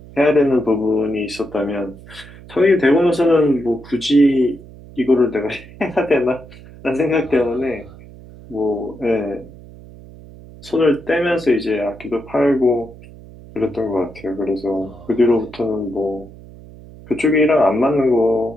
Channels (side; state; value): right; noise; hum, 19 dB below the sound